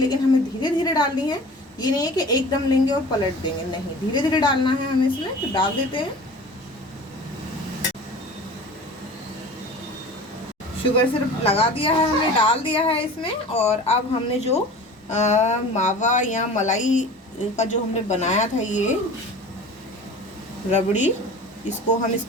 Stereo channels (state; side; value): normal; both; correlation 0.39